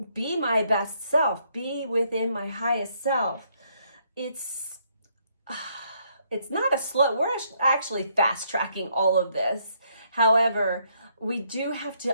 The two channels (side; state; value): both; inverted; correlation -0.71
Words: be my best self, be within my highest self. It's not a slow, we're actually fast tracking all of this. However, we do have